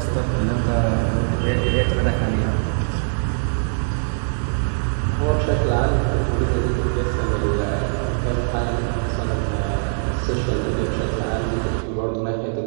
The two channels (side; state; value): left; silent; digital silence